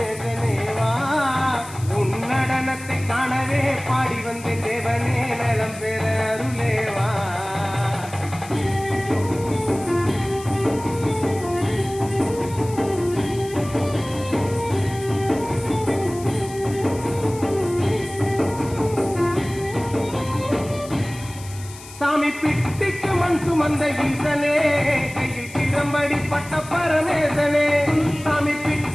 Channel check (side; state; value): left; noise; hiss, 17 dB below the sound